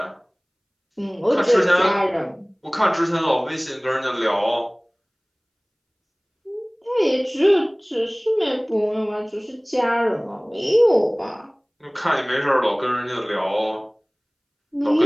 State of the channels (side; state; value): both; identical; correlation 1.00